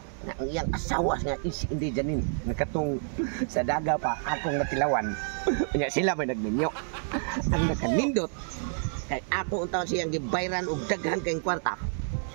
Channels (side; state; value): left; silent; digital silence